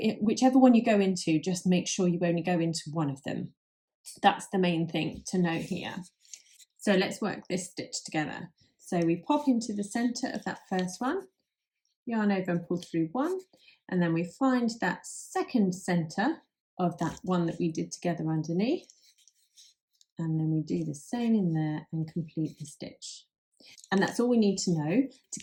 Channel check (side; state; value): both; identical; correlation 1.00